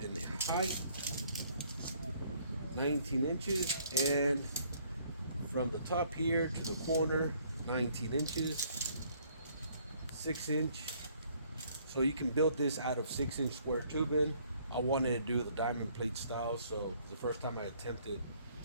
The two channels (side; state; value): both; inverted; correlation -0.63